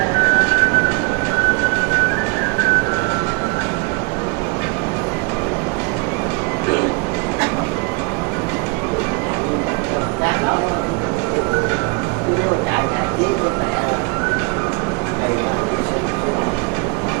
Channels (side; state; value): left; quieter; 31.4 dB